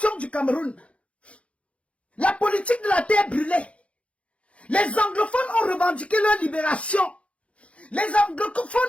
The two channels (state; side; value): late; right; 0.062 ms